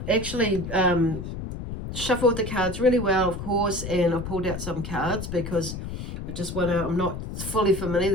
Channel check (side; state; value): left; noise; rumble, 7 dB below the sound